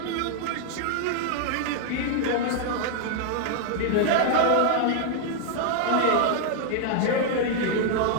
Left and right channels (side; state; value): both; different; correlation -0.01